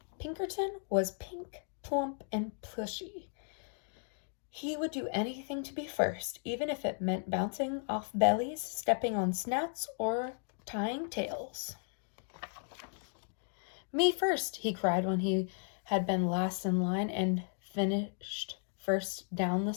Pinkerton was pink, plump, and plushy. He would do anything to be first, even if it meant bouncing off bellies, stepping on snouts, or tying tails. Me first, he cried when he had been last in line and finished first down the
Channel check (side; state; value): right; silent; 54 dB below the other